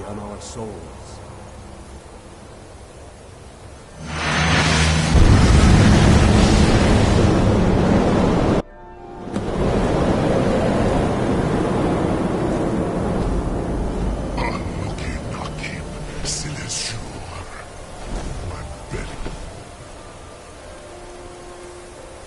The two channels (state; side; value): identical; both; correlation 1.00